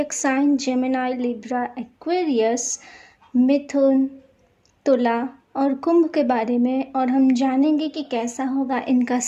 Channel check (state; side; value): identical; both; correlation 1.00